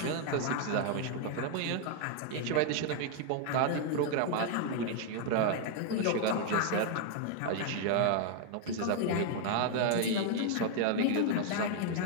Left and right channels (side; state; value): both; different; correlation 0.00